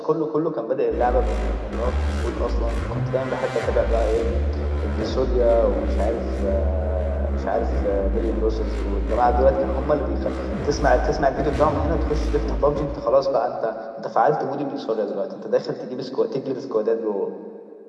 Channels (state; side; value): identical; both; correlation 1.00